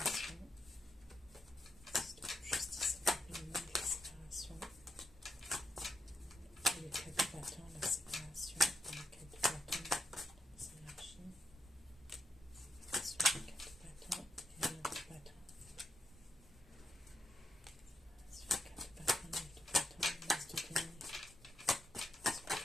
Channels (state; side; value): normal; both; correlation 0.84